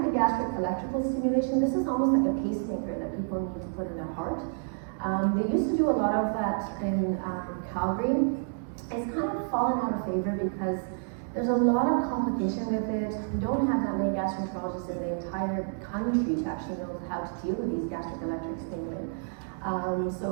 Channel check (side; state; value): left; silent; 58 dB below the other